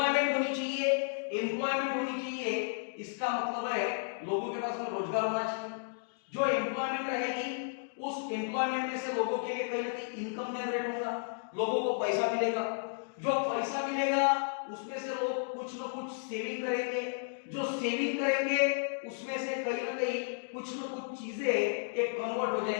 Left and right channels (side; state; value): right; silent; digital silence